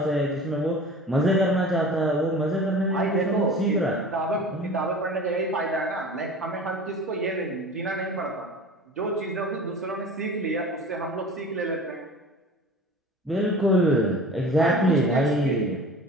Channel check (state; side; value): normal; both; correlation 0.40